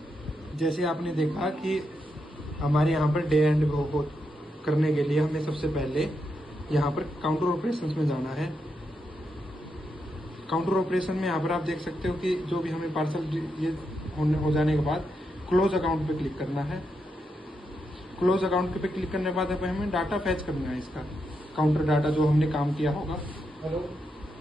जैसे आपने देखा कि हमारे यहाँ पर डे एंड करने के लिए हमें सबसे पहले यहाँ पर काउंटर ऑपरेशंस में जाना है। काउंटर ऑपरेशन में यहाँ पर आप देख सकते हो कि जो भी हमें पार्सल ये हो जाने के बाद क्लोज अकाउंट पे क्लिक करना है। क्लोज अकाउंट पे क्लिक करने के बाद हमें डाटा फैच करना है, इसका काउंटर डाटा जो हमने काम किया होगा।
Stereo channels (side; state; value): both; normal; correlation 0.83